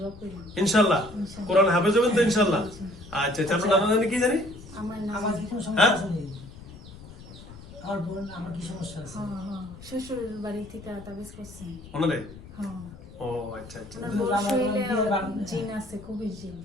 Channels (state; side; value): noise; left; rumble, 17 dB below the sound